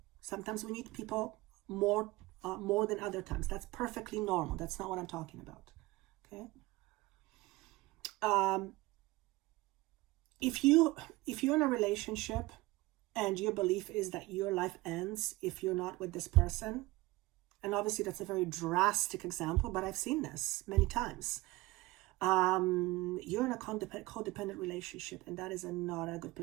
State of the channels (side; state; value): left; quieter; 20.3 dB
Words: Sometimes we need people more than other times. That's perfectly normal. That's not what I'm talking about. Okay. If you're in a relationship and your belief is that your life ends if you're not with this person, and obviously that's a very drastic example, but I've seen this many times. You're in a codependent relationship, and that is not a good